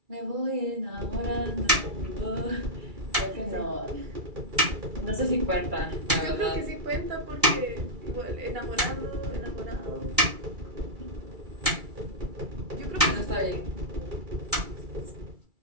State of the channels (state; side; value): late; left; 2.3 ms